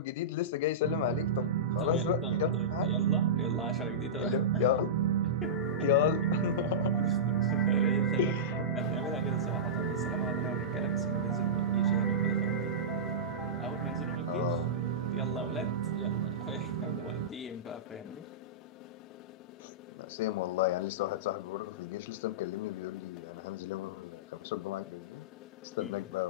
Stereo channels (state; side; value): normal; both; correlation -0.16